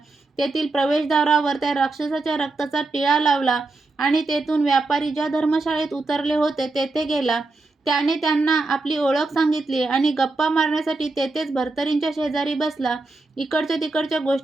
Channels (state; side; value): quieter; left; 3.3 dB